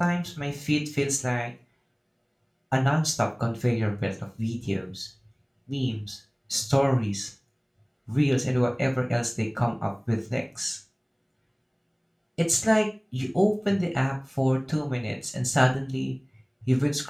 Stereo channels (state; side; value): identical; both; correlation 1.00